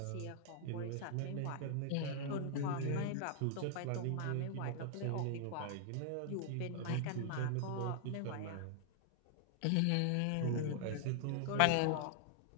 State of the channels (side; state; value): both; different; correlation -0.01